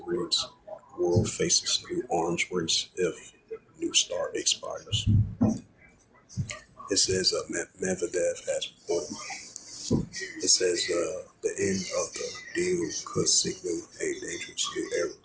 reads, World faces new arms race if New START expires. It says Medvedev has reported. It says the end of the deal could signal a dangerous new era.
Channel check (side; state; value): both; identical; correlation 1.00